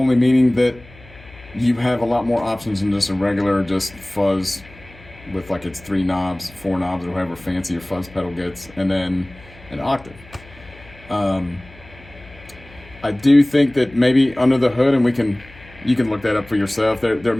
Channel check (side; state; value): left; noise; hum, 22 dB below the sound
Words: meaning that you have a lot more options than just a regular just fuzz with like its 3 knobs, 4 knobs, or however fancy your fuzz pedal gets, and then an octave. I do think that maybe under the hood, and you can look that up for yourself. There